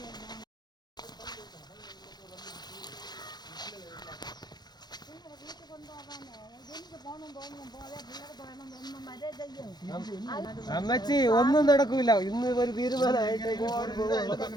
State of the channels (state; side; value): late; right; 0.20 ms